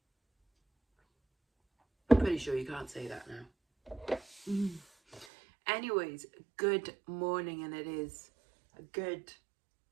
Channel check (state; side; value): drops out; left; at 5.2 s